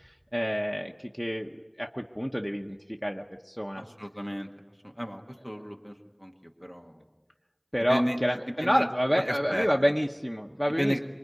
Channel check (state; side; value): identical; both; correlation 1.00